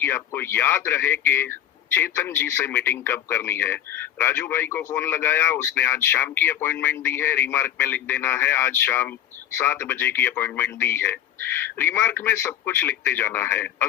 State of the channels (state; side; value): quieter; right; 11.1 dB